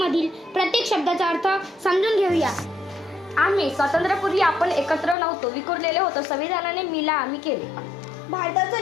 प्रत्येक शब्दाचा अर्थ समजून घेऊया. आम्ही स्वातंत्र्यापूर्वी आपण एकत्र नव्हतो, विखुरलेले होतो. संविधानाने मिला आम्ही केले.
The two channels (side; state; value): right; drops out; at 5.2 s